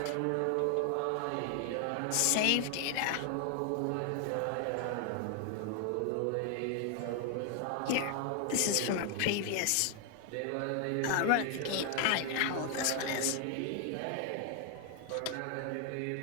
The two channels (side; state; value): both; different; correlation 0.00